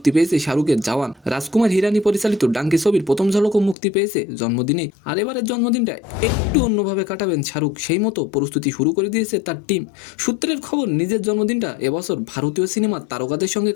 পেয়েছে শাহরুখের জওয়ান। রাজকুমার হিরানি পরিচালিত ডাঙ্কি ছবির প্রথম ঝলকও মুক্তি পেয়েছে জন্মদিনে। আর এবারের জন্মদিনটা একটু অন্যভাবে কাটাবেন শাহরুখ, সেই মতো প্রস্তুতি শুরু করে দিয়েছে তার টিম। সূত্রের খবর, নিজের জন্মদিনটা এবছর ভারতীয় সিনেমার তারকাদের সঙ্গে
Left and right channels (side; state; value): right; drops out; at 3.8 s